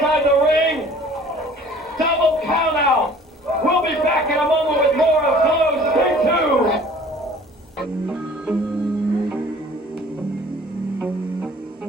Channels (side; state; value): both; normal; correlation 0.50